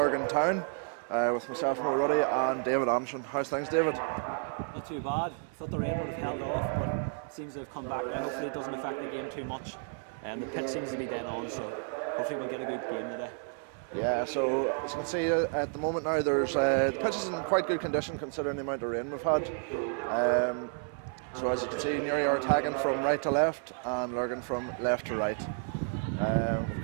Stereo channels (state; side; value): silent; left; 57 dB below the other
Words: Town with myself, Mo Ruddy, and David Anderson. How's things, David? Not too bad. Thought the rain would have held off, but it seems to have come back now. Hopefully it doesn't affect the game too much. The pitch seems to be dead on, so hopefully we'll get a good game today. Yeah, so as you can see at the moment now, there's the pitch is in quite good condition considering the amount of rain we've had. So as you can see, Newry are attacking from right to left and Lurgan from left to right. We've